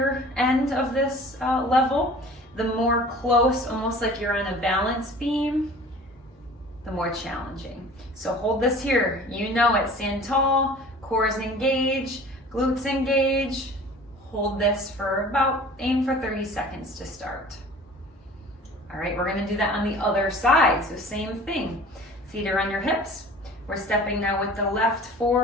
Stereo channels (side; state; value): both; normal; correlation 0.44